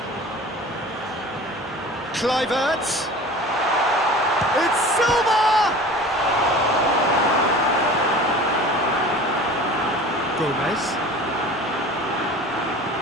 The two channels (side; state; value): both; normal; correlation 0.40